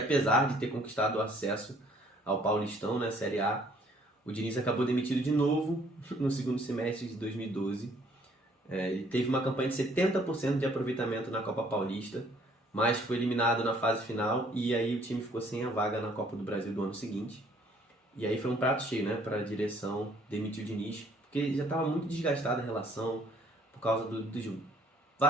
de ter conquistado o acesso ao Paulistão, na Série A, o Diniz acabou demitido de novo no 2º semestre de 2012. Ele teve uma campanha de 70% de aproveitamento na Copa Paulista, mas foi eliminado na fase final e aí o time ficou sem a vaga na Copa do Brasil do ano seguinte. E aí foi um prato cheio, né, para a direção demitir o Diniz, porque já estava muito desgastada a relação por causa dos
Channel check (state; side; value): normal; both; correlation 0.61